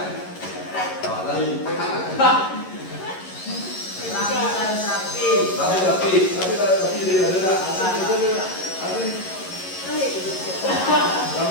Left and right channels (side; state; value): right; late; 11 ms